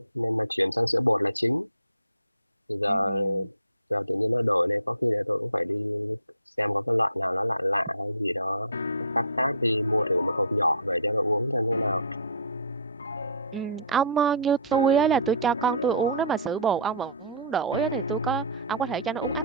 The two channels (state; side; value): inverted; both; correlation -0.40